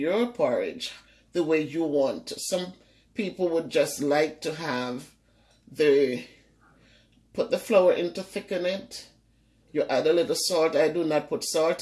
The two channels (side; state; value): both; identical; correlation 1.00